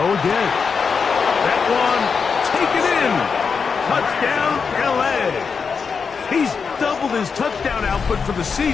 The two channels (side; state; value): right; quieter; 5.6 dB